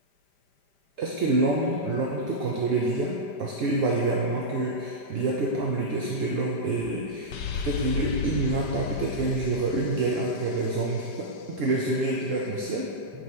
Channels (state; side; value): late; right; 5.0 ms